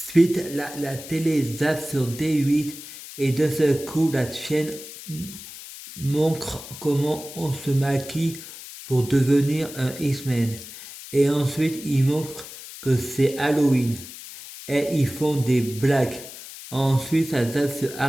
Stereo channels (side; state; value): left; noise; hiss, 14 dB below the sound